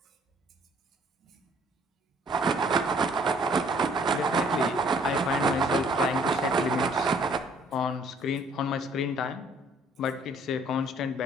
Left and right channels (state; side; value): normal; both; correlation 0.60